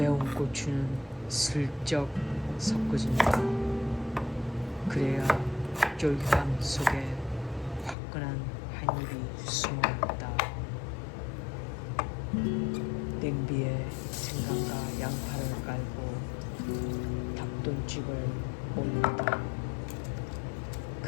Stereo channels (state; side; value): drops out; right; at 8.0 s